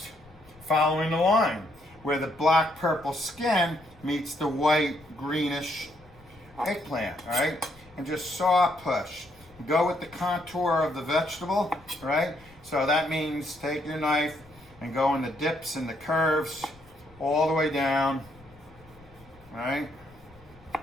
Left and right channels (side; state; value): left; noise; rumble, 25 dB below the sound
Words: following the line where the black purple skin meets the white greenish eggplant, all right? And just saw push. Go with the contour of the vegetable, right? So that means take your knife and go in the dips and the curves all the way down, right?